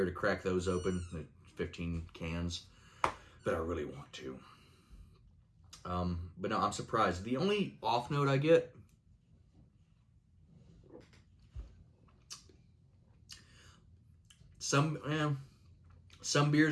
to crack those open, 15 cans. But I really want to. But no, I'm surprised. The only off note I get, some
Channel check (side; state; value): both; identical; correlation 1.00